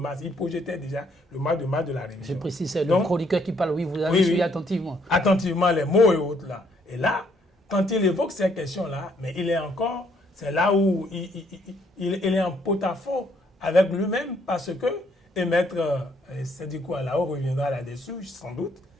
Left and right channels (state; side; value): normal; both; correlation 0.68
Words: il projetait déjà le mois de mars de la révision. Je précise, c'est le chroniqueur qui parle, oui, vous avez suivi attentivement. Attentivement les mots et autres là. Et là, quand il évoque ces questions-là, mais il est encore, c'est là où il est en porte-à-faux avec lui-même parce que, et maître Sédhikou Alao reviendra là-dessus, sans doute,